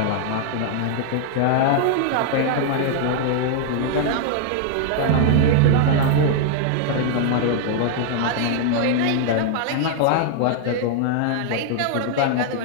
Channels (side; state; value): both; different; correlation 0.00